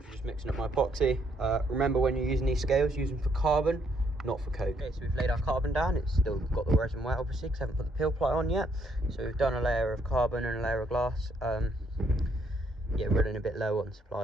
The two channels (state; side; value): normal; both; correlation 0.71